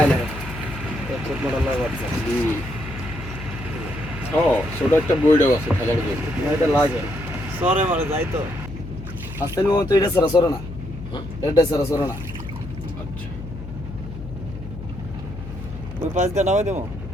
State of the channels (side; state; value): left; noise; hum, 11 dB below the sound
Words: ছোট একটা বইটাও আছে খেলার জন্য এটা লাগে সরে মারে যাই তো আস্তে নো তো এটা সরে না এটা সরে না আচ্ছা ওই পাঁচ দিয়ে নামাই দেবো